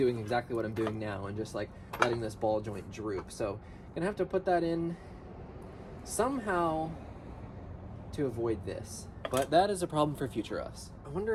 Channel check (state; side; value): identical; both; correlation 1.00